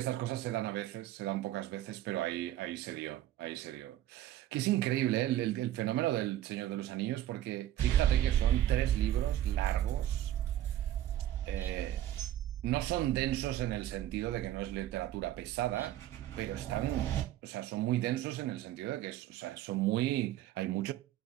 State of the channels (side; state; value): left; quieter; 13.1 dB